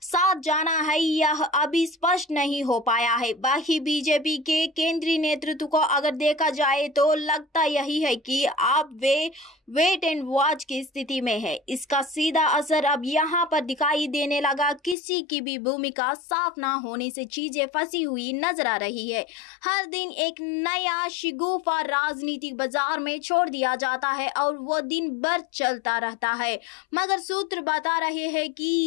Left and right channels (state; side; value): drops out; right; at 15.0 s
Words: साथ जाना है यह अभी स्पष्ट नहीं हो पाया है। बाकी बीजेपी के केंद्रीय नेतृत्व को अगर देखा जाए तो लगता यही है कि अब वे वेट एंड वॉच की स्थिति में है। इसका सीधा असर अब यहाँ पर दिखाई देने लगा। किसी की भी भूमिका साफ ना होने से चीजें फंसी हुई नजर आ रही है। हर दिन एक नया शिगुफा राजनीतिक बाजार में छोड़ दिया जाता है और वो दिन भर चलता रहता है, मगर सूत्र बता रहे हैं